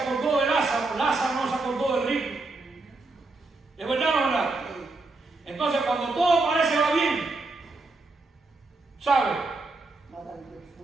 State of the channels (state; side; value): quieter; left; 3.4 dB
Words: de Lázaro, Lázaro no se acordó del rico. ¿Es verdad o no es verdad? Entonces cuando todo parece va bien, ¿sabe?